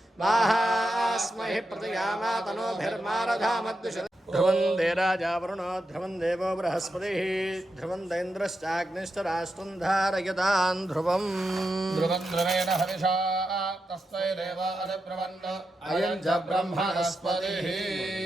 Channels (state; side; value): normal; both; correlation 0.87